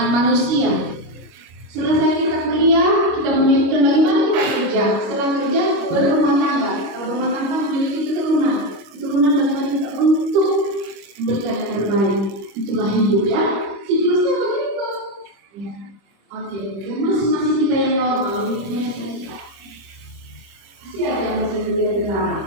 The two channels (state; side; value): late; left; 25 ms